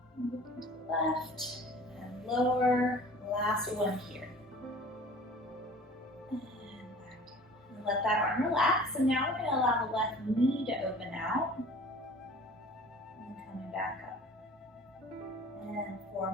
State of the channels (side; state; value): both; normal; correlation 0.45